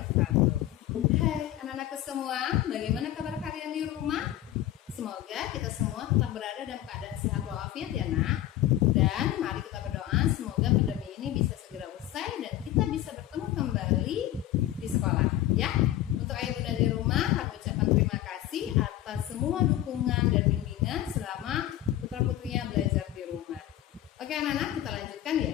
Hai anak-anakku semua, bagaimana kabar kalian di rumah? Semoga kita semua tetap berada dalam keadaan sehat walafiat ya nak. Dan mari kita berdoa semoga pandemi ini bisa segera usai dan kita bisa bertemu kembali di sekolah ya. Untuk ayah bunda di rumah, kami ucapkan terima kasih atas semua dukungan dan bimbingan selama putra-putrinya belajar di rumah. Oke anak-anak, kita lanjutkan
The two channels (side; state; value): right; quieter; 13.5 dB